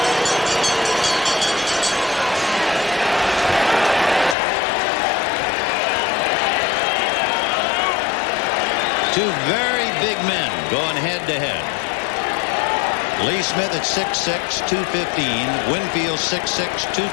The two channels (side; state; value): right; drops out; at 4.4 s